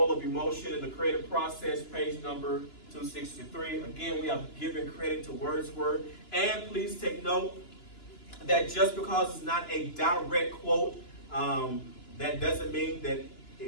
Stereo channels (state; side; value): late; right; 2.9 ms